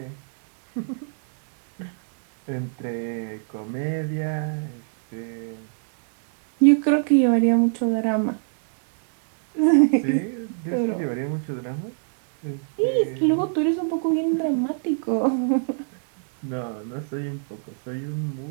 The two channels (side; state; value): left; silent; digital silence